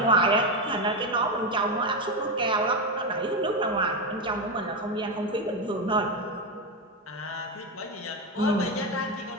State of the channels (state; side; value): normal; both; correlation 0.11